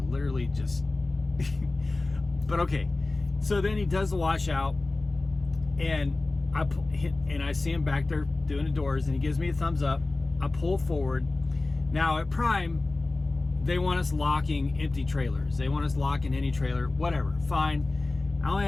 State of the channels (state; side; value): quieter; right; 3.2 dB